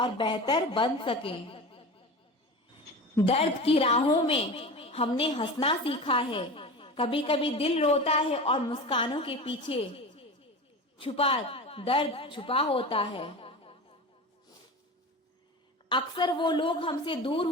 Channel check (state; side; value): normal; both; correlation 0.30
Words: बेहतर बन सकें। दर्द की राहों में हमने हंसना सीखा है। कभी कभी दिल रोता है और मुस्कानों के पीछे छुपा दर्द छुपा होता है। अक्सर वो लोग हमसे दूर